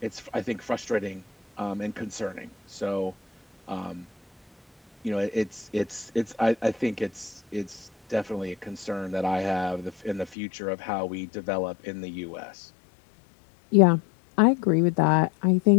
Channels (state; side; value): drops out; right; at 10.4 s